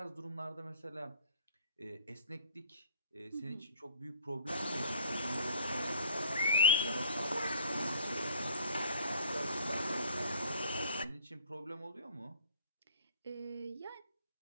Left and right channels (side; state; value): both; inverted; correlation -0.53